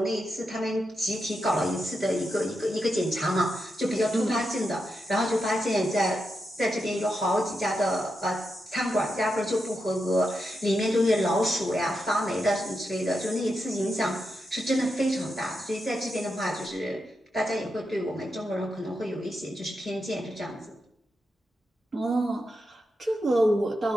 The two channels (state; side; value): normal; both; correlation 0.86